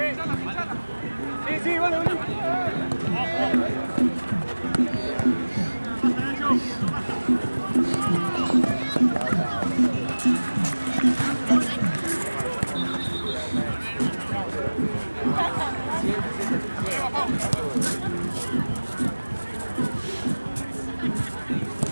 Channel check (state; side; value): inverted; both; correlation -1.00